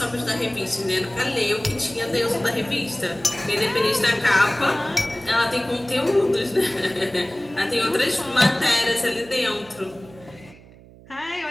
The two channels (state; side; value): noise; right; hum, 22 dB below the sound